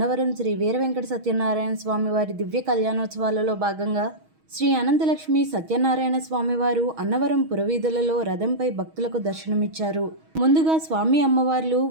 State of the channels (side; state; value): left; late; 6.3 ms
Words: శ్రీ వీర వెంకట సత్యనారాయణ స్వామివారి దివ్య కళ్యాణోత్సవాలలో భాగంగా శ్రీ అనంతలక్ష్మి సత్యనారాయణ స్వామివారు అన్నవరం పురవీధులలో రథంపై భక్తులకు దర్శనమిచ్చారు. ముందుగా స్వామి అమ్మవార్లు